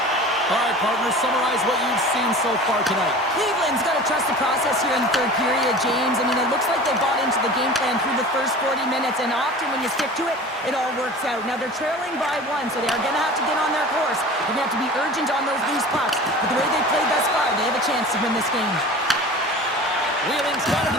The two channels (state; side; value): normal; both; correlation 0.38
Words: All right, partners, summarize what you've seen so far tonight. Cleveland's got to trust the process here in the 3rd period, James. I mean, it looks like they bought into the game plan through the first 40 minutes, and often when you stick to it, it all works out. Now, they're trailing by 1, so they are going to have to get on their course. They're going to have to be urgent on those loose pucks. But the way they've played thus far, they have a chance to win this game. Wheeling's got it